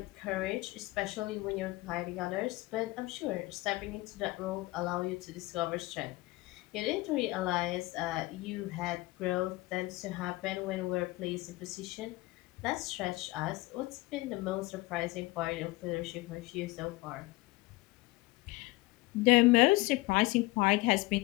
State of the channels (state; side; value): quieter; right; 21.2 dB